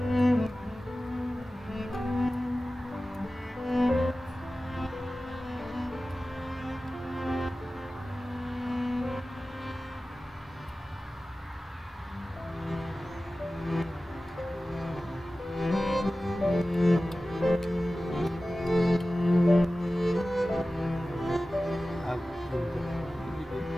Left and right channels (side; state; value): both; normal; correlation 0.96